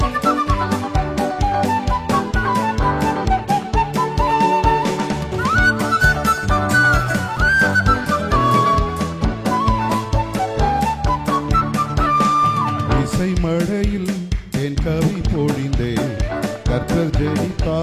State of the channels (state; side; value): identical; both; correlation 1.00